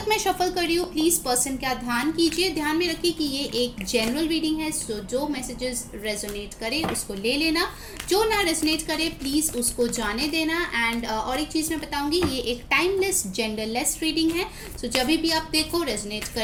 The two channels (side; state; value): both; identical; correlation 1.00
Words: मैं शफल कर रही हूँ प्लीज़ पर्सन का ध्यान कीजिए, ध्यान में रखिए कि ये एक जनरल रीडिंग है, सो जो मैसेजेस रेजोनेट करे उसको ले लेना, जो ना रेजोनेट करे प्लीज़ उसको जाने देना। एंड और एक चीज़ मैं बताऊंगी, ये एक टाइमलेस जेंडरलेस रीडिंग है, सो जब भी आप देखो रेजोनेट